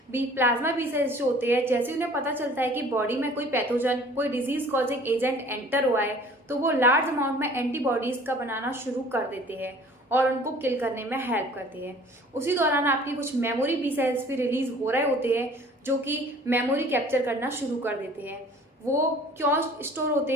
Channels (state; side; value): normal; both; correlation 0.50